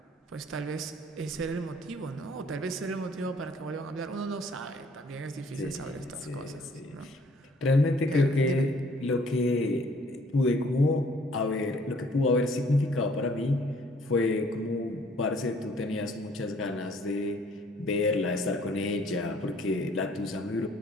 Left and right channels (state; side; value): normal; both; correlation 0.59